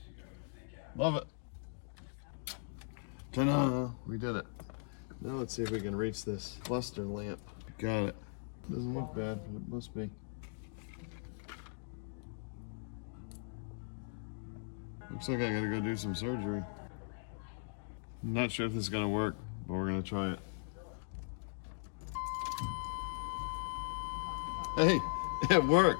Love it. Ta-da! We did it. Now let's see if we can reach this cluster lamp. Got it. Doesn't look bad, but it must be. Looks like I gotta go do some surgery. I'm not sure if this is gonna work, but we're gonna try it. Hey, it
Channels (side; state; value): right; silent; digital silence